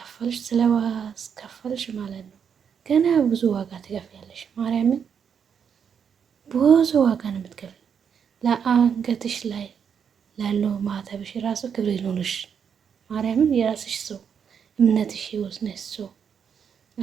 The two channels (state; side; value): quieter; left; 7.3 dB